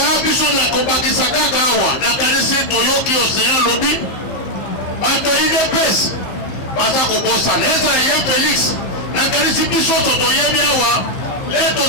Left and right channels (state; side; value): late; right; 15 ms